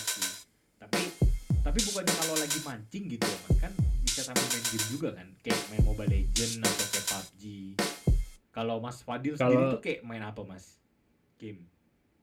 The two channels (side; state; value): both; identical; correlation 1.00